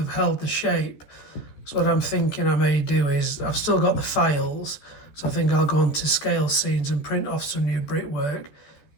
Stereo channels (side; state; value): right; late; 14 ms